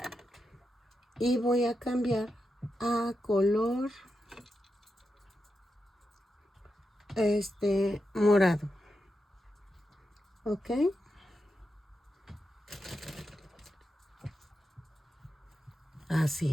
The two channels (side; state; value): both; normal; correlation 0.87